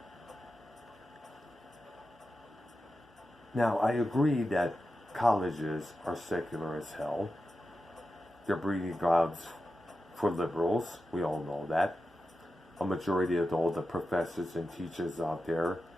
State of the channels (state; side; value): normal; both; correlation 0.91